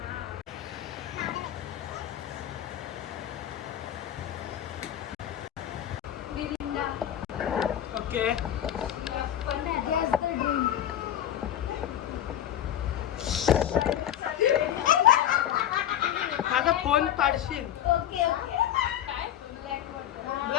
ओके माझा फोन पाडशील.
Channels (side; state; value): right; quieter; 11.2 dB